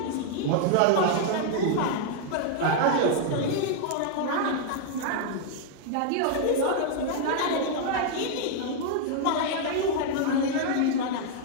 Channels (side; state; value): both; different; correlation 0.00